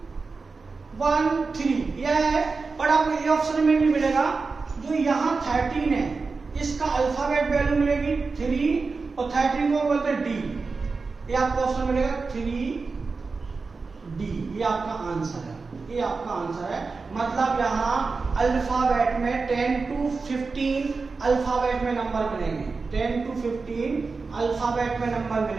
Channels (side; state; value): left; quieter; 4.3 dB